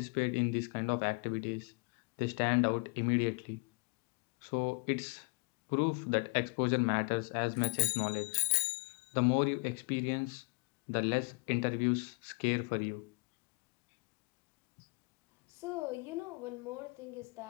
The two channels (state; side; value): quieter; right; 31.8 dB